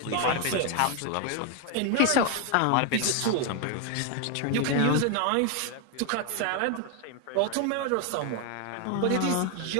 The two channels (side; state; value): both; different; correlation 0.01